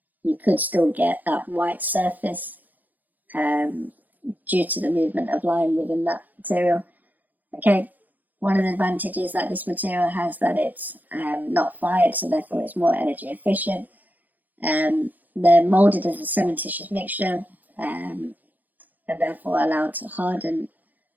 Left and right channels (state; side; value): late; left; 0.083 ms